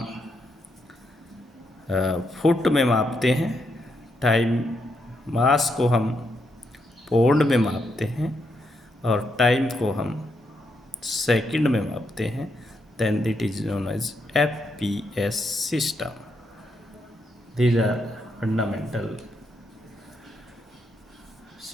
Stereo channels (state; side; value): normal; both; correlation 0.80